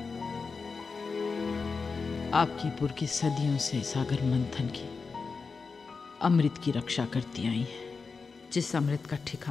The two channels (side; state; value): right; quieter; 4.7 dB